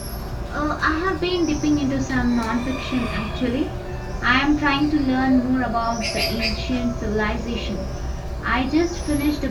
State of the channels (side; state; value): both; identical; correlation 1.00